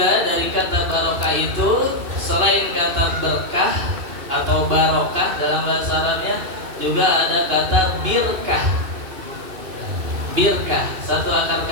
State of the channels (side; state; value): left; late; 2.7 ms